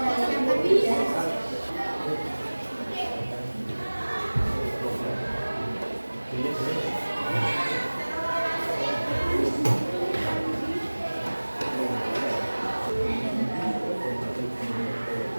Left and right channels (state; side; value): inverted; both; correlation -1.00